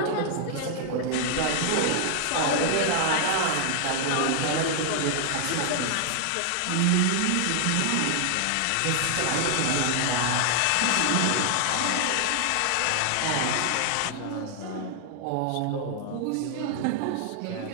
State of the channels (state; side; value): different; both; correlation 0.00